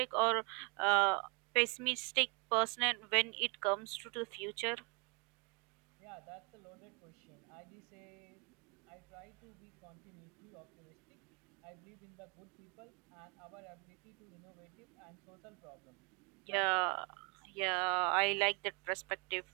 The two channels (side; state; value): left; quieter; 32.2 dB